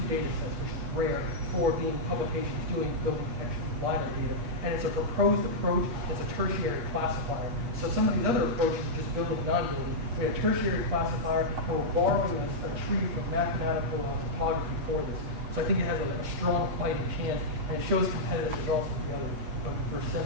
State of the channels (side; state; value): left; late; 8.6 ms